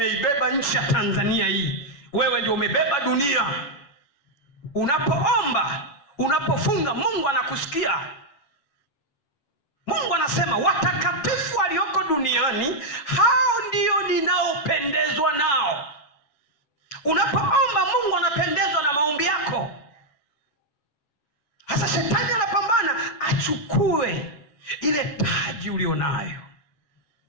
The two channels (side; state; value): right; late; 7.1 ms